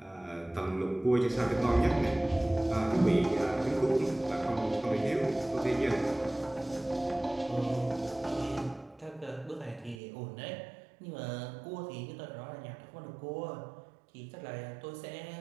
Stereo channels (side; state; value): left; drops out; at 10.0 s